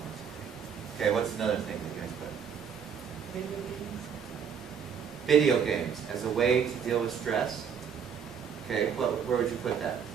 Okay, what's another thing that you guys put? Video games as a way to deal with stress. Okay, where would you put that?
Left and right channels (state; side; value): quieter; left; 7.3 dB